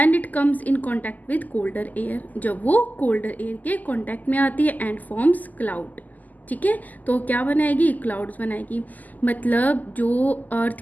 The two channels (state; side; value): late; right; 0.081 ms